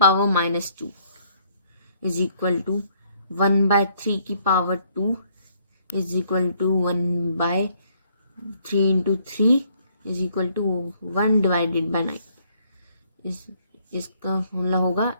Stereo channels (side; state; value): both; inverted; correlation -0.67